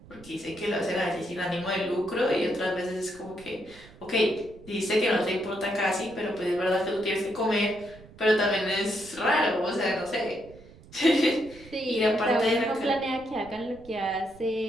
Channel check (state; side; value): noise; right; rumble, 21 dB below the sound